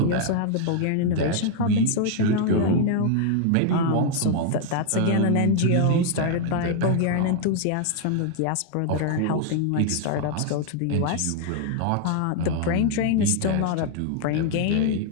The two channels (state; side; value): different; both; correlation 0.00